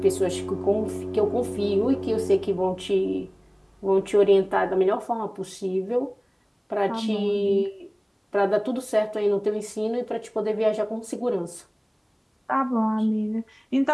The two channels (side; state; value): both; identical; correlation 1.00